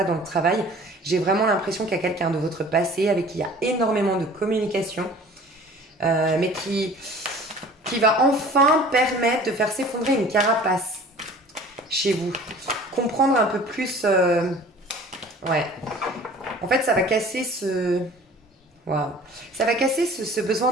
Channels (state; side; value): normal; both; correlation 0.46